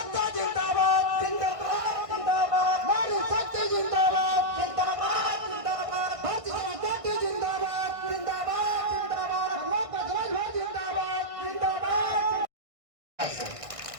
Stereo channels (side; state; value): left; late; 1.6 ms